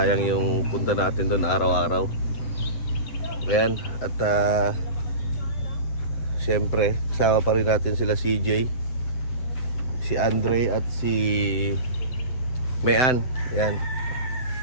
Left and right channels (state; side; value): late; right; 7.9 ms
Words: yung punta natin doon araw-araw. Ayan, at siyempre, kasama pa rin natin sila CJ, si Andre at si Mayan. Ayan.